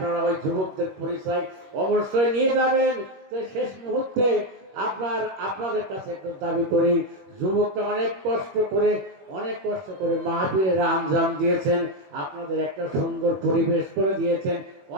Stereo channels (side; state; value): left; late; 21 ms